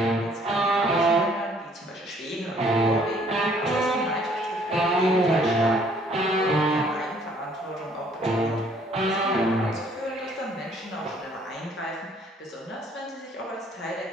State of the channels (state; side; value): normal; both; correlation 0.61